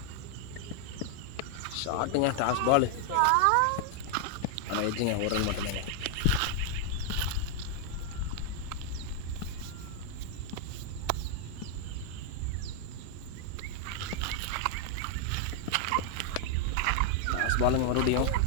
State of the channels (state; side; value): different; both; correlation 0.00